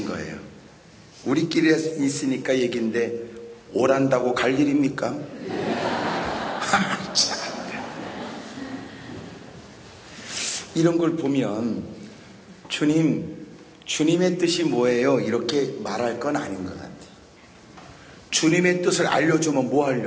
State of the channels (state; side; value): identical; both; correlation 1.00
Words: 거예요. 우리끼리 있으니까 얘기인데 오란다고 갈 일입니까? 이런 걸 보면 주님의 뜻이 뭐예요? 이렇게 말할 건 아닌 것 같아요. 주님의 뜻을 알려주면 뭐